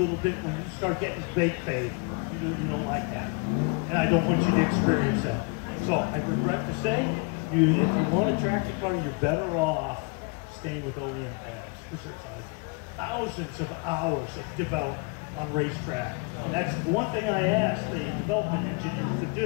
bit when you start getting brake fade. You don't like that. And I don't want you to experience that. So I regret to say, if you want to track the car, you're better off staying with OEM pads, because there's thousands of hours of development on racetrack. And that's the one thing I ask the development engineers to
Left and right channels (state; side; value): quieter; right; 30.5 dB